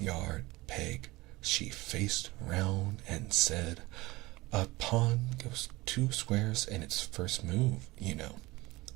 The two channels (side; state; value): left; quieter; 20.8 dB